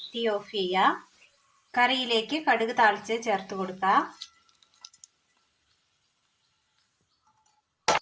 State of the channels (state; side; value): identical; both; correlation 1.00